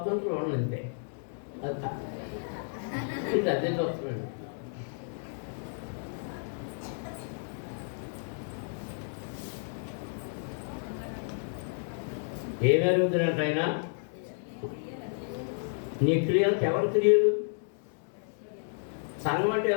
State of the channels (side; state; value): right; silent; digital silence